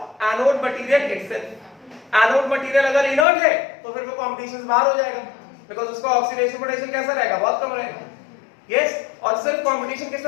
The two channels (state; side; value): drops out; right; at 3.2 s